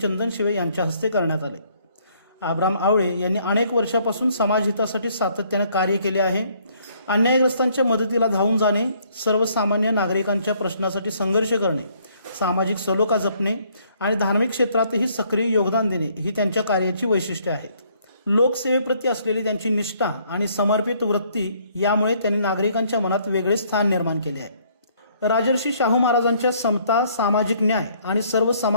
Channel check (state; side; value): inverted; both; correlation -0.65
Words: यांच्या हस्ते करण्यात आले। अब्राम आवळे यांनी अनेक वर्षापासून समाजहितासाठी सातत्याने कार्य केले आहे। अन्यायग्रस्तांच्या मदतीला धावून जाणे, सर्वसामान्य नागरिकांच्या प्रश्नासाठी संघर्ष करणे, सामाजिक सलोखा जपणे आणि धार्मिक क्षेत्रातही सक्रिय योगदान देणे ही त्यांच्या कार्याची वैशिष्ट्ये आहेत। लोकसेवेप्रती असलेली त्यांची निष्ठा आणि समर्पित वृत्ती यामुळे त्यांनी नागरिकांच्या मनात वेगळे स्थान निर्माण केले आहे। राजर्षी शाहू महाराजांच्या समता, सामाजिक न्याय आणि